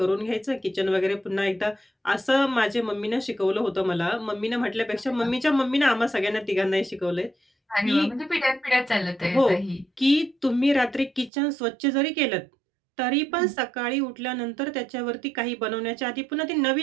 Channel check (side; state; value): left; drops out; at 11.3 s